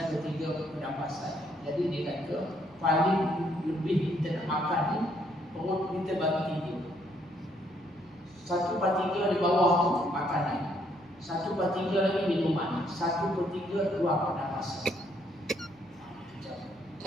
pernafasan. Jadi dia kata paling lebih kita nak makan ni perut kita bagi 3. 1/3 di bawah tu makanan, 1/3 lagi minuman, 1/3 ruang pernafasan.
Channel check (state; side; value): noise; right; hum, 29 dB below the sound